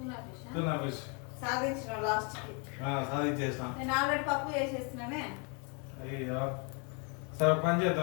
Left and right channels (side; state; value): right; quieter; 35.2 dB